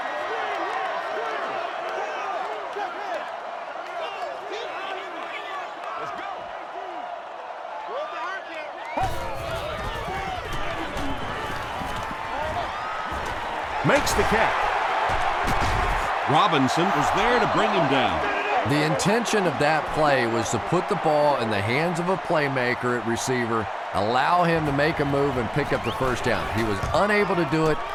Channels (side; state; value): both; identical; correlation 1.00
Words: Makes the catch. Robinson was there to bring him down. The intention of that play was to put the ball in the hands of a playmaker at receiver, allow him to make a move and pick up the first down. He was unable to do it,